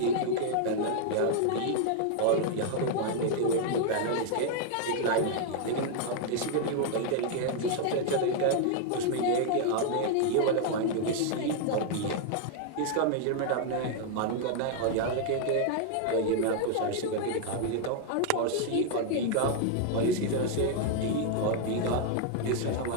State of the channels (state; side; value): different; both; correlation 0.00